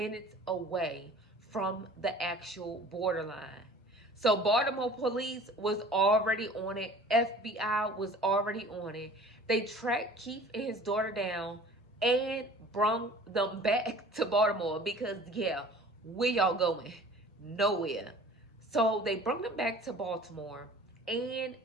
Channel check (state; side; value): normal; both; correlation 0.46